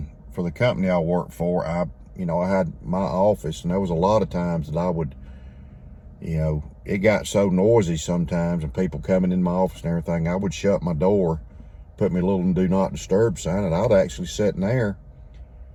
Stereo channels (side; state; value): both; identical; correlation 1.00